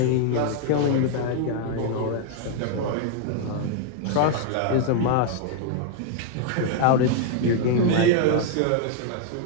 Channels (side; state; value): both; different; correlation 0.00